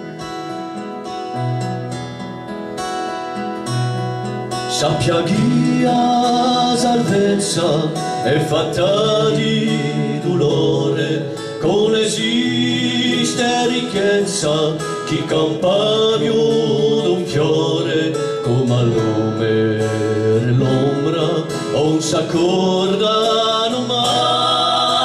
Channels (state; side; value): identical; both; correlation 1.00